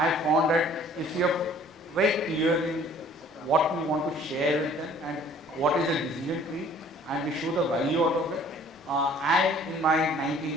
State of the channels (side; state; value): both; normal; correlation 0.54